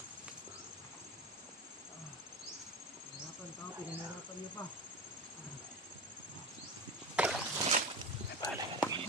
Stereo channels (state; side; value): normal; both; correlation 0.25